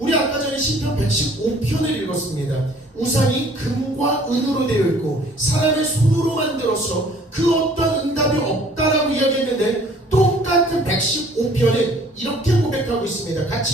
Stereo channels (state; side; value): normal; both; correlation 0.55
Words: 아까 전에 시편 115편을 읽었습니다. 우상이 금과 은으로 되어 있고 사람의 손으로 만들어서 그 어떤 응답이 없다라고 이야기했는데 똑같은 115편은 이렇게 고백하고 있습니다.